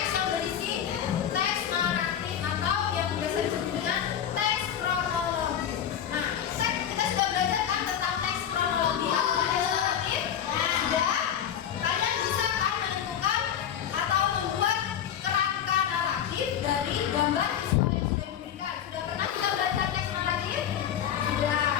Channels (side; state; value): right; quieter; 9.4 dB